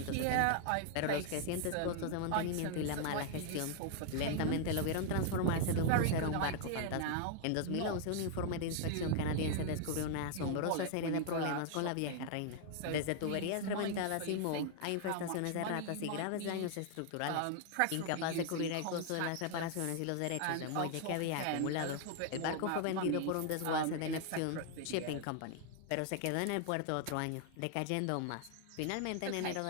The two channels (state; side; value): different; both; correlation 0.00